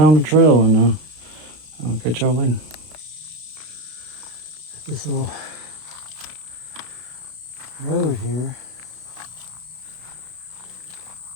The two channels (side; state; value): left; late; 32 ms